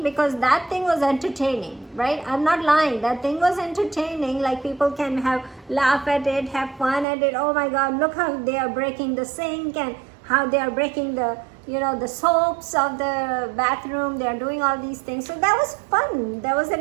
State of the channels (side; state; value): left; drops out; at 7.1 s